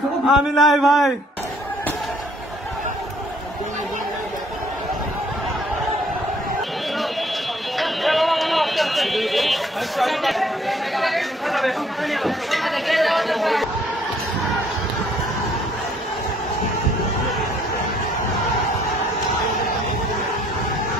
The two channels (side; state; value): both; normal; correlation 0.62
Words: আমি নাই ভাই